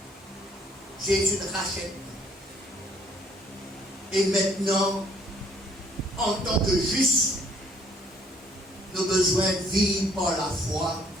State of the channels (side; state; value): both; normal; correlation 0.62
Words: Jésus nous rachète. Et maintenant, en tant que juste, nous avons besoin de vivre par la foi.